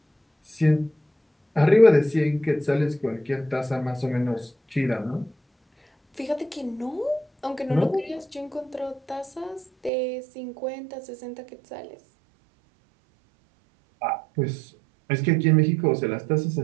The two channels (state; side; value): drops out; left; at 9.9 s